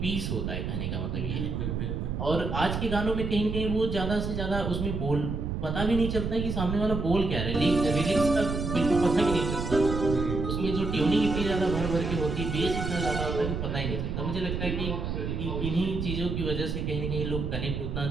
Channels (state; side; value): noise; right; rumble, 3 dB below the sound